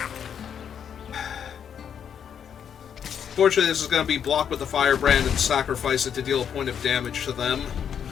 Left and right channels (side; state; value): right; quieter; 8.2 dB